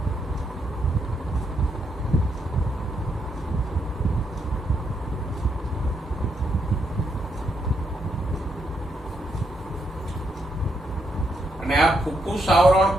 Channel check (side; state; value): both; normal; correlation 0.78